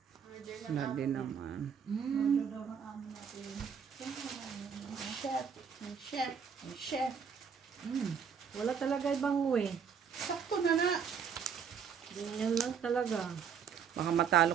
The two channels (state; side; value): quieter; left; 7.0 dB